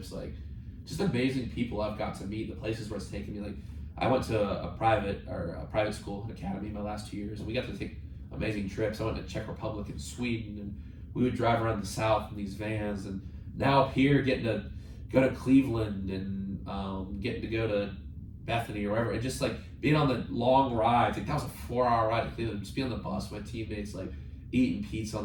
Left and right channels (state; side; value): identical; both; correlation 1.00